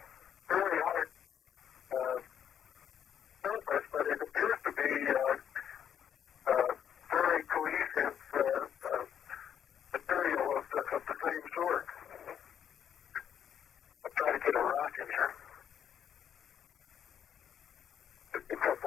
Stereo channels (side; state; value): right; quieter; 9.0 dB